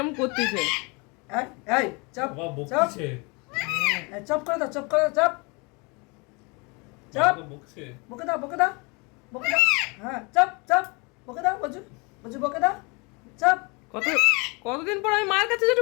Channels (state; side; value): quieter; right; 29.3 dB